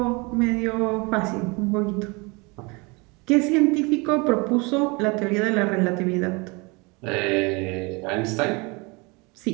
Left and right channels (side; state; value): left; quieter; 27.9 dB